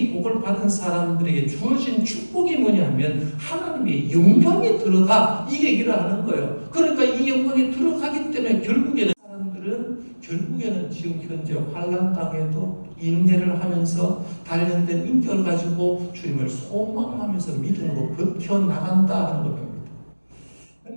복을 받은 사람들에게 주어진 축복이 뭐냐 하면 하나님의 영광에 들어가, 이 얘기를 하는 거예요. 그러니까 이 영광에 들어가기 때문에 결국에는 사람들은 우리는 지금 현재 환난 땅에도 인내를 하면서 단련된 인격을 가지고 주님을 소망하면서 믿음으로 버텨나간다 하는 겁니다.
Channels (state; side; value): inverted; both; correlation -1.00